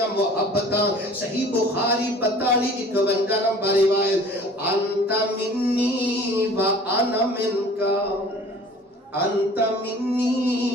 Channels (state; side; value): normal; both; correlation 0.48